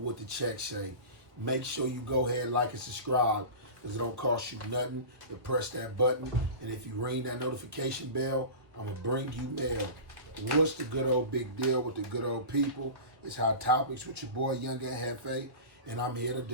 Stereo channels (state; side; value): late; left; 1.4 ms